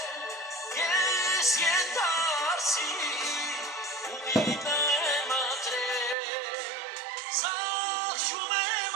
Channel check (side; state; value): left; drops out; at 6.2 s